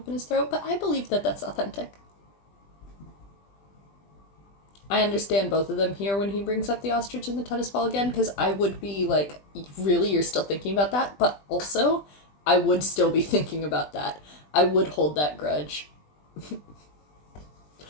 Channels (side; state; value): right; late; 20 ms